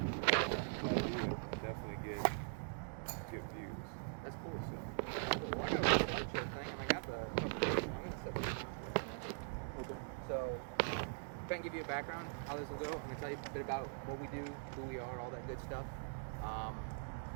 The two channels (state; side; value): silent; left; digital silence